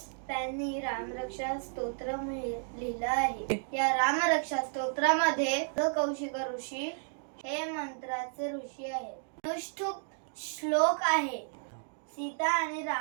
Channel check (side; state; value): left; silent; digital silence